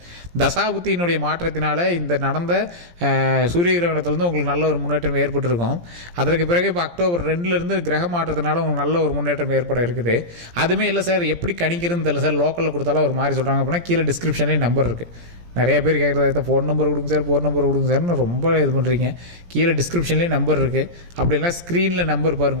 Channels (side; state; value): left; late; 17 ms